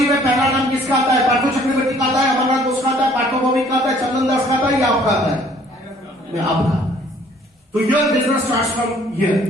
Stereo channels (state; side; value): normal; both; correlation 0.58